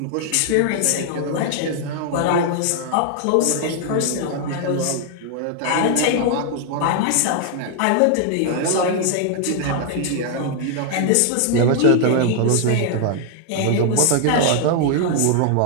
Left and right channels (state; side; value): different; both; correlation 0.00